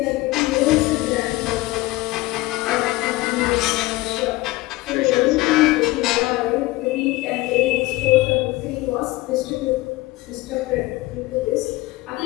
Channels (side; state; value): right; quieter; 19.8 dB